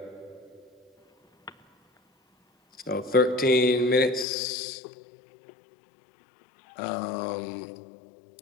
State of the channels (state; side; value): drops out; right; at 4.2 s